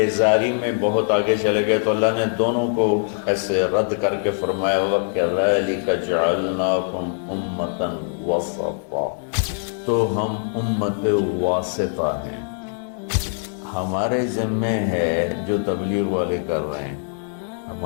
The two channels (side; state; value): right; silent; digital silence